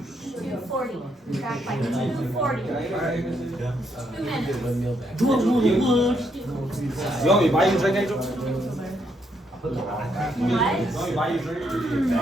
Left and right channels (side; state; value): both; normal; correlation 0.75